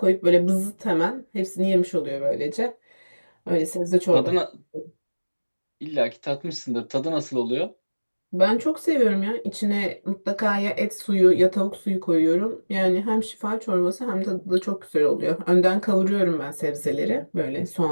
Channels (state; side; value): inverted; both; correlation -1.00